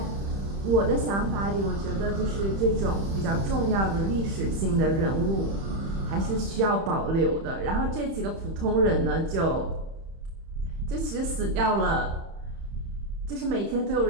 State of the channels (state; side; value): late; left; 31 ms